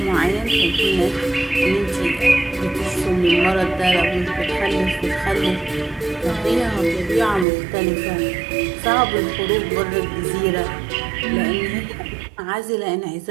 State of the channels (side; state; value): left; drops out; at 7.5 s